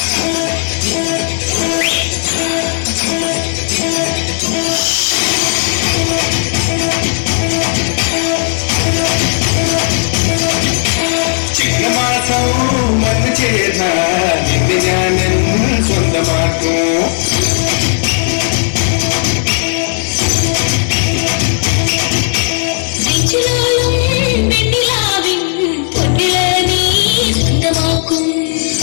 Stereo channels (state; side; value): silent; right; 62 dB below the other